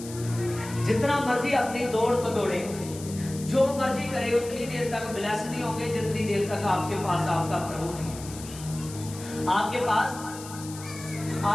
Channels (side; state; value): left; noise; hiss, 14 dB below the sound